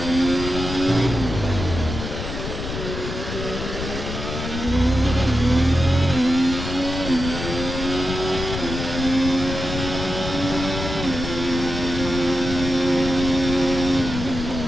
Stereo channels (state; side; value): noise; left; rumble, 6 dB below the sound